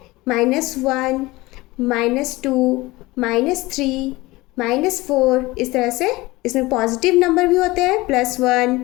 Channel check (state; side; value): quieter; right; 20.7 dB